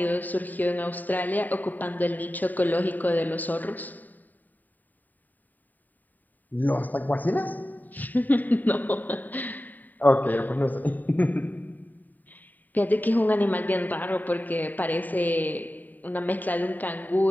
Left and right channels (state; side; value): late; right; 0.086 ms